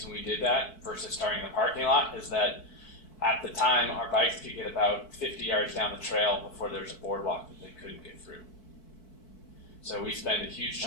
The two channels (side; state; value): right; late; 4.6 ms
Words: we did that versus starting in the parking lot is that at the time our bikes could get about 50 yards down the trail before there's a boardwalk that they couldn't get through. So we spend a huge